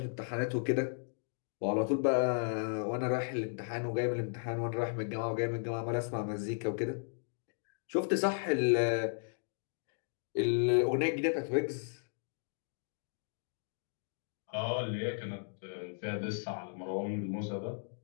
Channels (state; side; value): silent; right; digital silence